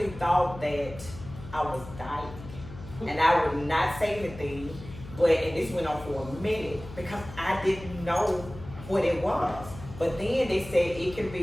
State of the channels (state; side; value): noise; left; hum, 14 dB below the sound